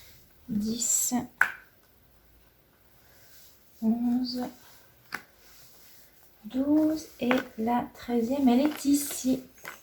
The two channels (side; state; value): both; identical; correlation 1.00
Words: 10, 11, 12 et la 13e, elle est ici.